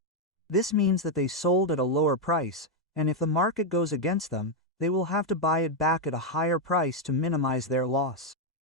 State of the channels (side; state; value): both; normal; correlation 0.01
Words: This means that they sold at a lower price, and if the market goes against them, they will have to buy it back at a higher price to minimize their loss.